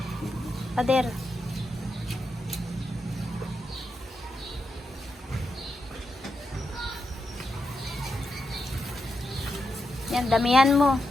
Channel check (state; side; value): normal; both; correlation 0.86